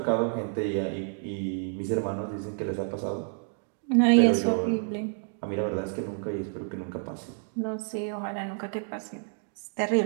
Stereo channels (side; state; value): left; silent; 55 dB below the other